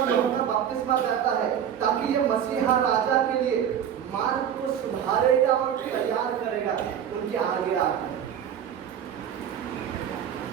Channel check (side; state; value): left; quieter; 9.1 dB